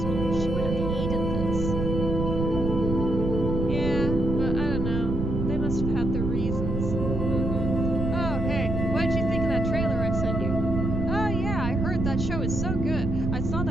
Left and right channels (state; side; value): noise; right; rumble, 2 dB below the sound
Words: She would have hated this. Yeah, but I don't know. They must have had their reasons. Oh, hey, what did you think of that trailer I sent you? Oh, yeah, I heard that show is so good. I saw